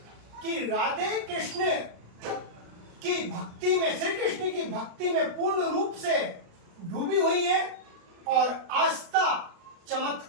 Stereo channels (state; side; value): late; left; 36 ms